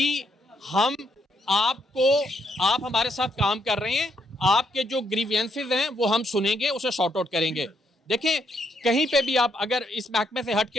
हम आपको, आप हमारे साथ काम कर रहे हैं, आपके जो ग्रीवियंसेस हैं वो हम सुनेंगे, उसे सॉर्ट आउट करेंगे। देखें कहीं पे भी आप अगर इस महकमे से हट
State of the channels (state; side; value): normal; both; correlation 0.75